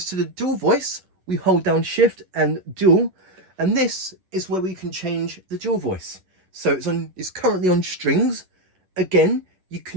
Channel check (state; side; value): late; left; 10 ms